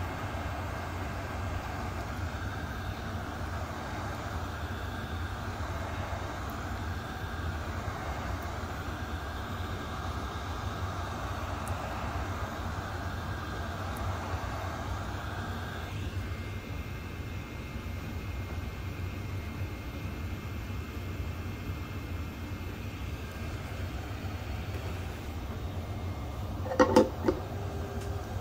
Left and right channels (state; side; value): identical; both; correlation 1.00